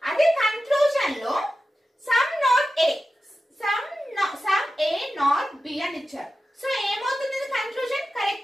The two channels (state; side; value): normal; both; correlation 0.93